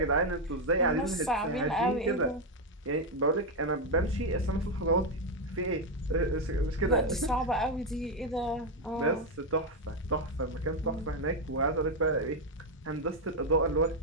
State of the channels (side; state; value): both; normal; correlation 0.05